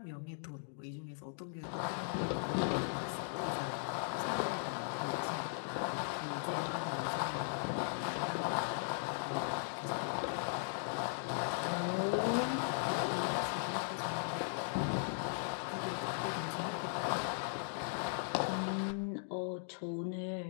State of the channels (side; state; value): right; silent; digital silence